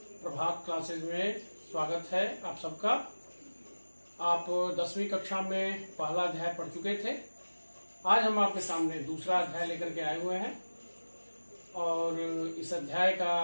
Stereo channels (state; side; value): inverted; both; correlation -1.00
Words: प्रभात क्लासेज में स्वागत है आप सबका। आप 10वीं कक्षा में पहला अध्याय पढ़ चुके थे। आज हम आपके सामने दूसरा अध्याय लेकर के आए हुए हैं और इस अध्याय का